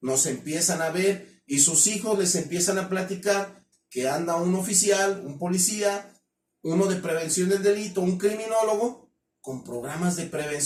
Nos empiezan a ver y sus hijos les empiezan a platicar que anda un oficial, un policía, uno de prevención del delito, un criminólogo con programas de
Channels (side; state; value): both; identical; correlation 1.00